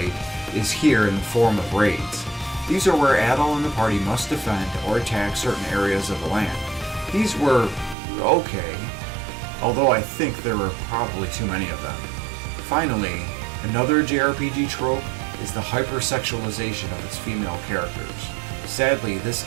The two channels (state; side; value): drops out; left; at 8.0 s